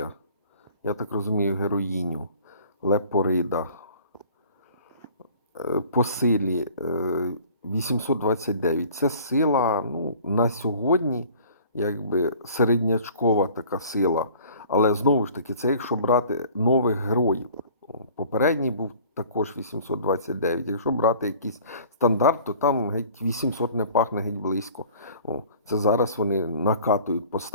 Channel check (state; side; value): inverted; both; correlation -0.49